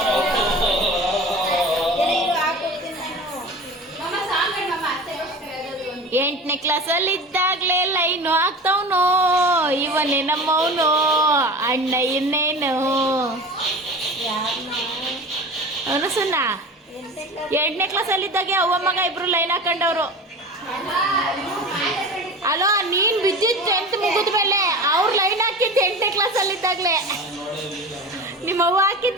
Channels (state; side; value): normal; both; correlation 0.34